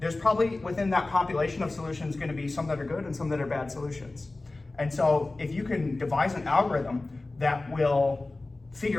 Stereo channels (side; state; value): right; quieter; 3.1 dB